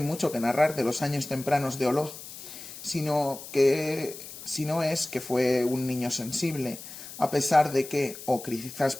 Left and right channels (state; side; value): noise; left; hiss, 13 dB below the sound